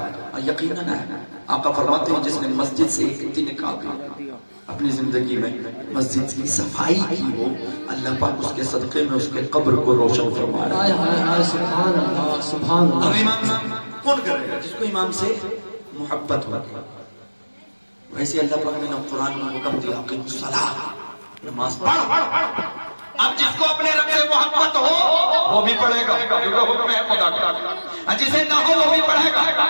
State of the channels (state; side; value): inverted; both; correlation -1.00